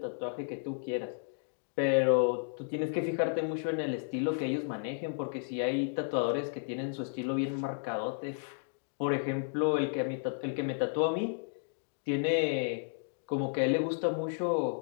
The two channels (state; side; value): silent; right; digital silence